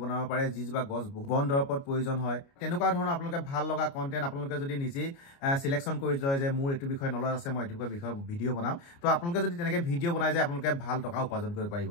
বনাব পাৰে যিজোপা গছ বন দৰৱত প্ৰয়োজন হয় তেনেকুৱা ধৰণৰ আপোনালোকে ভাল লগা কন্টেন্ট আপোনালোকে যদি নিজেই সিলেকশ্যন কৰি লয় যে মোৰ এইটো বিষয়ে নলেজ আছে মই এইটো বিষয়ে ভিডিও বনাম তো আপোনালোকে যদি তেনেকৈ ভিডিও বনাই যায় আপোনালোকে ভাল টকা উপাৰ্জন কৰিব পাৰিব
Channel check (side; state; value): right; late; 29 ms